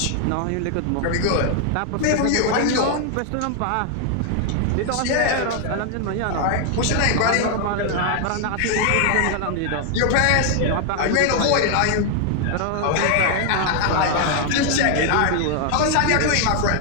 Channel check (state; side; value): different; both; correlation 0.00